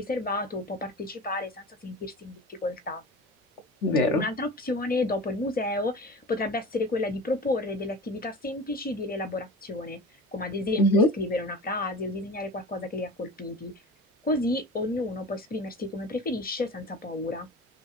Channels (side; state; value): both; normal; correlation 0.35